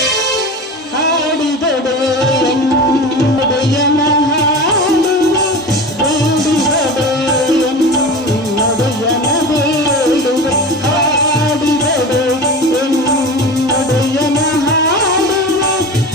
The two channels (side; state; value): both; normal; correlation 0.31